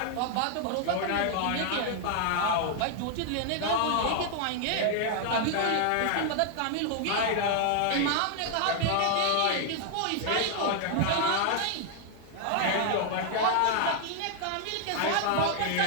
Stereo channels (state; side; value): different; both; correlation 0.00